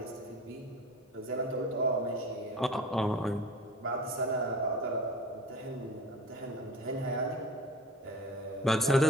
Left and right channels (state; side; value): normal; both; correlation 0.38